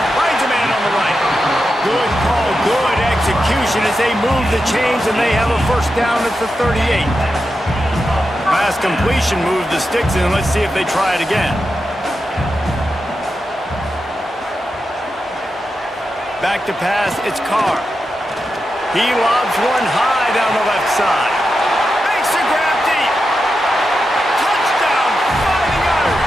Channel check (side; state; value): both; normal; correlation 0.89